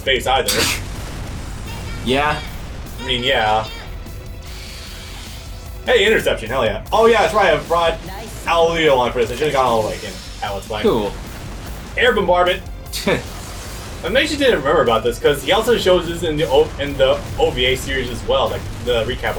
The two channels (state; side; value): identical; both; correlation 1.00